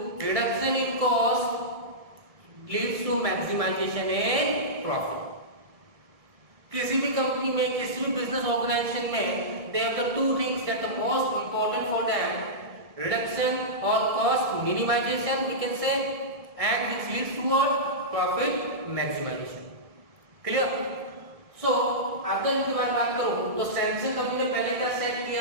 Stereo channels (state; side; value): late; left; 1.7 ms